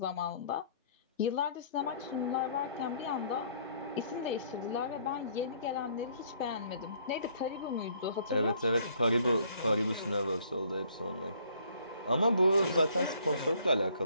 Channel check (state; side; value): inverted; both; correlation -0.61